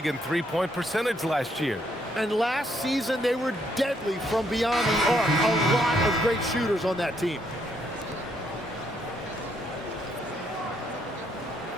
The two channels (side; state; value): both; normal; correlation 0.73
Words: in three-point percentage last year. And last season, they were deadly from beyond the arc. A lot of great shooters on that team.